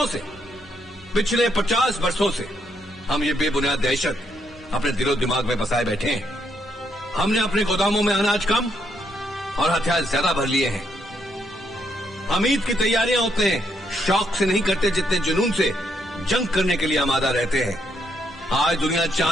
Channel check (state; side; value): normal; both; correlation 0.75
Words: से, पिछले 50 वर्षों से हम ये बेबुनियाद दहशत अपने दिलो दिमाग में बसाए बैठे हैं। हमने अपने गोदामों में अनाज कम और हथियार ज्यादा भर लिए हैं। हम ईद की तैयारियां उतने शौक से नहीं करते जितने जुनून से जंग करने के लिए आमादा रहते हैं। आज दुनिया